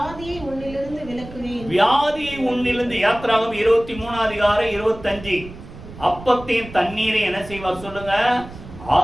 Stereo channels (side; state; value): right; noise; rumble, 15 dB below the sound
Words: உன்னிலிருந்து விலக்குவேன். வியாதியை உன்னிலிருந்து. யாத்ராகமம் 23 அதிகாரம் 25. அப்பத்தையும் தண்ணீரை என்ன செய்வார் சொல்லுங்க,